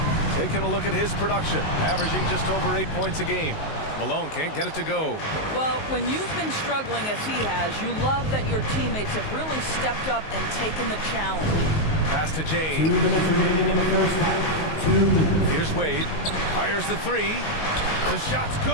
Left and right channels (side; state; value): right; late; 19 ms